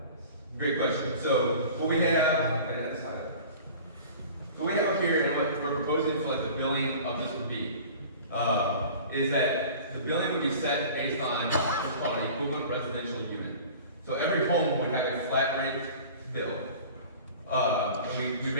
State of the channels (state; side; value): inverted; both; correlation -0.42